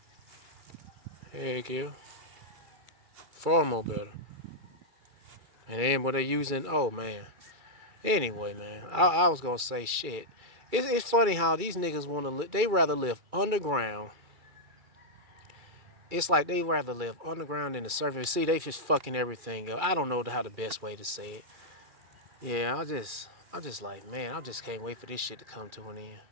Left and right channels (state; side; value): late; left; 2.3 ms